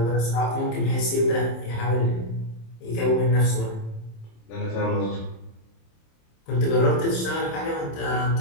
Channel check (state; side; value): late; right; 27 ms